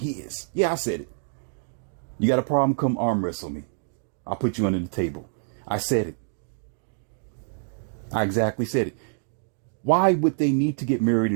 Yeah, I said it. You got a problem? Come arm wrestle me. I'll put you under the table. I said it. I exactly said it. Why would they need to get married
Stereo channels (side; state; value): left; silent; digital silence